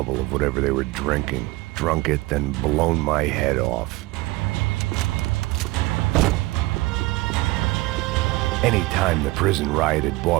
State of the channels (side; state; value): left; quieter; 20.9 dB